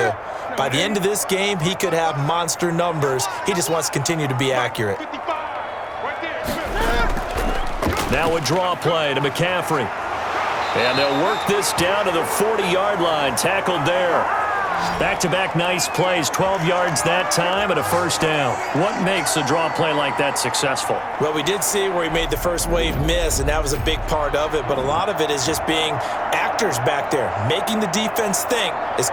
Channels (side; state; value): both; identical; correlation 1.00